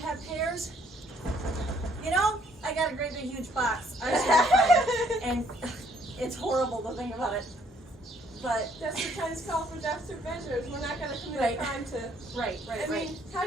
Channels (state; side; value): normal; both; correlation 0.65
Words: have pairs. You know, I got a great big huge box. I was gonna find, and it's horrible to think about it. But Desperate times call for desperate measures. We're not going to commit Right. a crime to. right. I mean, how